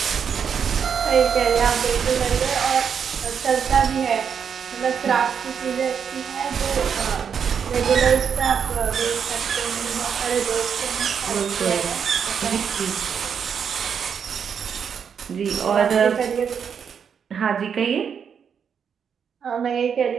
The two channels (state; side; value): quieter; left; 7.2 dB